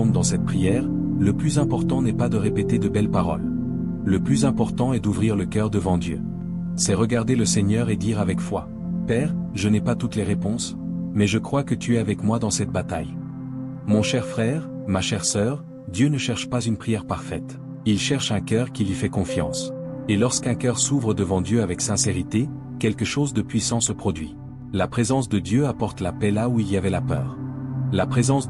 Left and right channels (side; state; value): both; identical; correlation 1.00